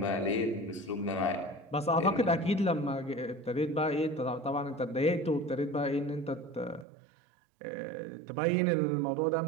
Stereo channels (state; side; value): drops out; left; at 6.9 s